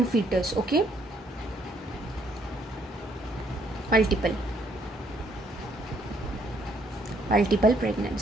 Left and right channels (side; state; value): both; normal; correlation 0.68